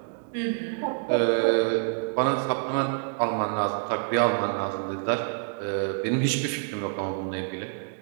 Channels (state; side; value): silent; left; 60 dB below the other